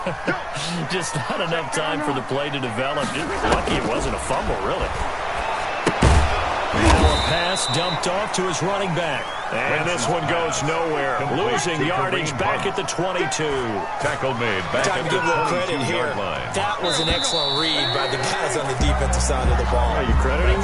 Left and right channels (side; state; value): both; identical; correlation 1.00